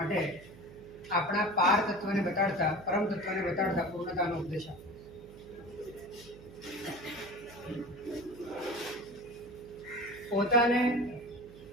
આપણા પાર તત્વને બતાડતા પરમ તત્વને બતાડતા પૂર્ણતાનો ઉપદેશ પોતાને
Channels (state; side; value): noise; right; hum, 19 dB below the sound